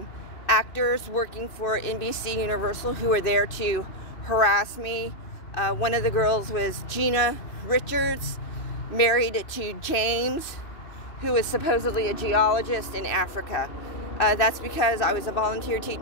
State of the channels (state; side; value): late; right; 2.6 ms